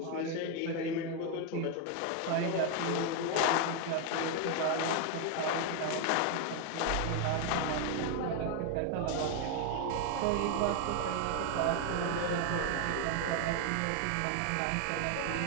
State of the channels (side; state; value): both; different; correlation 0.01